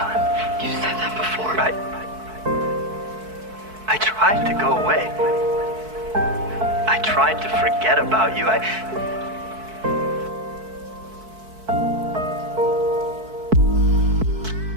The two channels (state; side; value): late; left; 4.6 ms